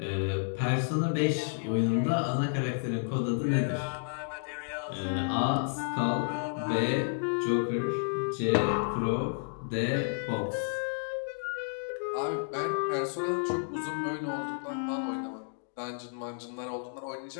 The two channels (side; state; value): right; silent; digital silence